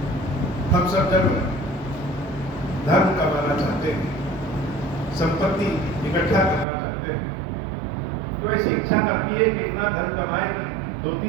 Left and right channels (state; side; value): drops out; left; at 6.7 s